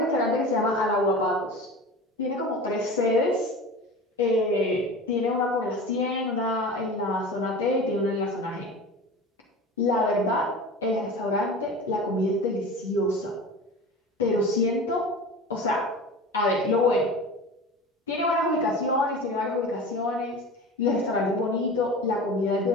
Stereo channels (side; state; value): both; normal; correlation 0.34